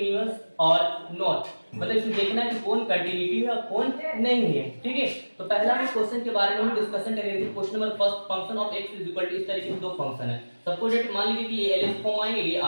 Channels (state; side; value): inverted; both; correlation -1.00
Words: और नॉट, मतलब इसमें देखना है कि कौन कंटिन्यूटी है और कौन नहीं है। ठीक है, तो पहला हम क्वेश्चन के बारे में हम डिस्कशन करेंगे। Question number first, function of x is equal to, इस तरीके से दो फंक्शन है। सपोज दैट मान लीजिए कि ये एलएस फॉर्म आएंगे, ये